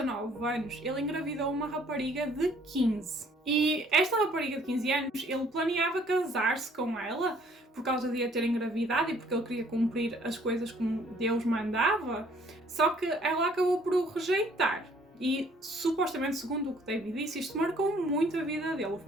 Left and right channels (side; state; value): both; normal; correlation 0.60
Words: anos, ele engravidou uma rapariga de 15. E esta rapariga de 15 anos, ele planeava casar-se com ela por causa de a ter engravidado e porque ele queria cumprir as coisas como Deus mandava. Só que ela acabou por o rejeitar. E, supostamente, segundo o que David disse, isto marcou muito a vida dele, o